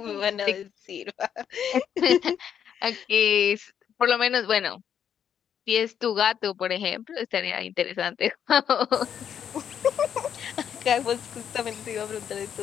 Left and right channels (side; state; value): right; quieter; 8.6 dB